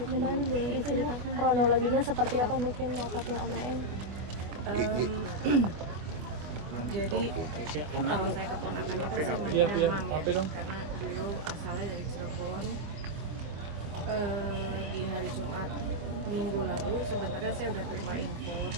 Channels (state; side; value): late; left; 25 ms